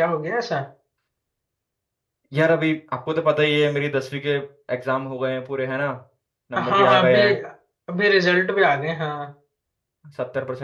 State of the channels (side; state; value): both; identical; correlation 1.00